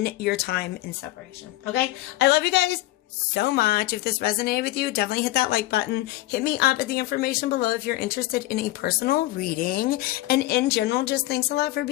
your time in separation. Okay? I love you guys so much. If this resonated with you, definitely hit that like button. Hit me up at the information below if you're interested in a personal reading. And in general, just thanks a lot for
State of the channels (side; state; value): right; quieter; 17.2 dB